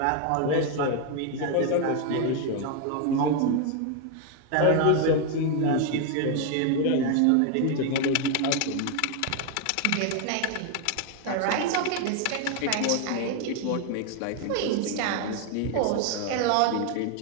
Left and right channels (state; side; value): different; both; correlation 0.01